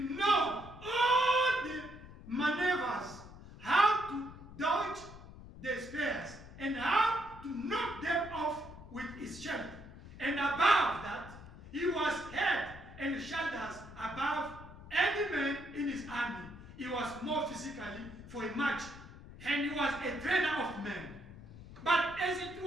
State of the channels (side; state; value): left; noise; rumble, 16 dB below the sound